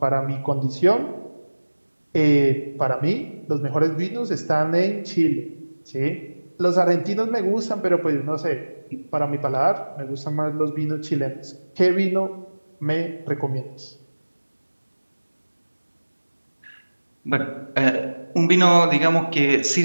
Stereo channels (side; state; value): both; inverted; correlation -1.00